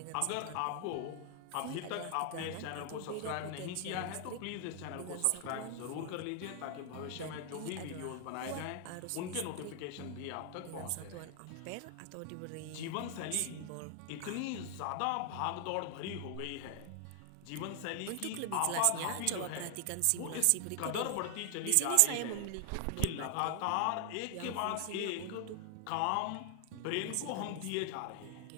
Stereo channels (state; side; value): different; both; correlation 0.00